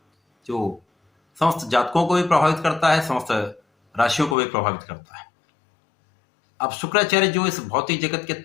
जो समस्त जातकों को भी प्रभावित करता है, समस्त राशियों को भी प्रभावित करता है। अब शुक्राचार्य जो इस भौतिक जगत के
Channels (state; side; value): drops out; right; at 4.4 s